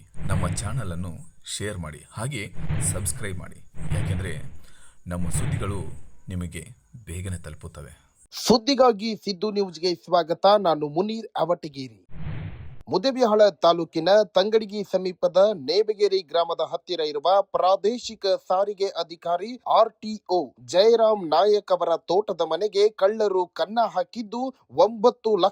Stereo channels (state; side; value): identical; both; correlation 1.00